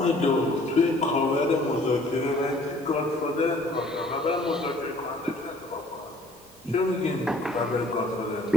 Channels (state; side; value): normal; both; correlation 0.56